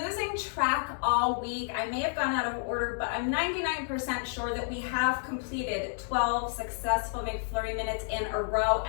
losing track all week. I may have gone out of order, but I'm 99% sure that we have completed 12 successful McFlurry minutes in a row,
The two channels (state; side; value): silent; right; digital silence